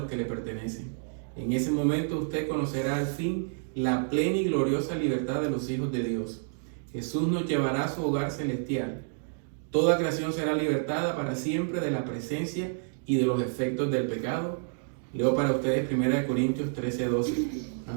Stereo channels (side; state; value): left; silent; digital silence